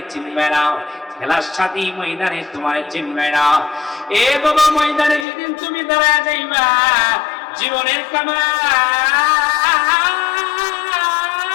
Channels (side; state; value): right; drops out; at 5.2 s